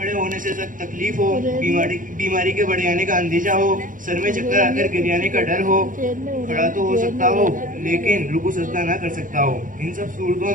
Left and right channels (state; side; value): late; left; 0.39 ms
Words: होने से सख्त तकलीफ हो, बीमारी के बढ़ जाने का अंदेशा हो, सर में चक्कर आकर गिर जाने का डर हो, खड़ा तो हो सकता हो लेकिन रुकू सजदा ना कर सकता हो। इन सब सूरतों